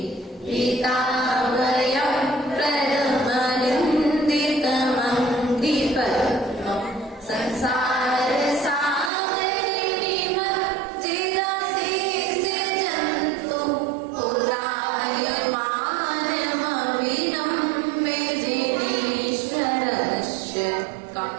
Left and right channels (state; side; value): drops out; left; at 9.1 s